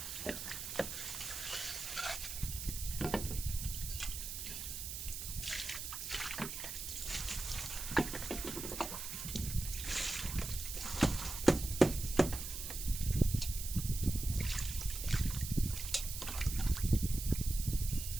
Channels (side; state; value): right; noise; hiss, 6 dB below the sound